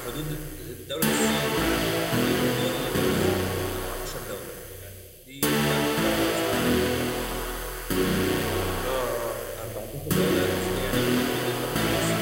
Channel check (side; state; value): both; identical; correlation 1.00